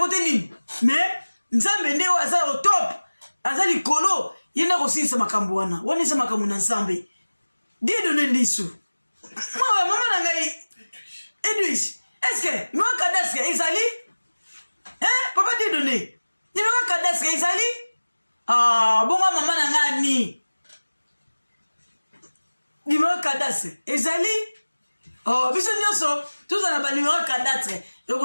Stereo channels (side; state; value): both; inverted; correlation -1.00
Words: mais nzambe nde aza au top aza likolo yena kosilisa makambo wana isa makambo na nzambe die donne ndisu mama na ngai Edwige est-ce que moi cadastre ezali papa die donne ni moi cadastre ezali bonga mama na ngani numéro cadastre ezali biso nyonso tozana ba numéro cadastre